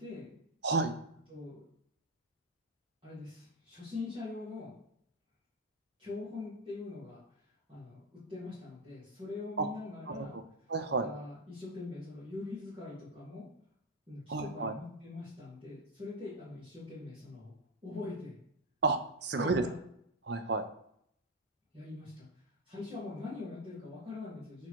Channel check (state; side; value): normal; both; correlation 0.06